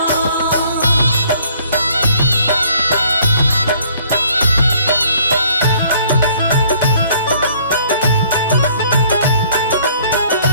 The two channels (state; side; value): inverted; both; correlation -0.60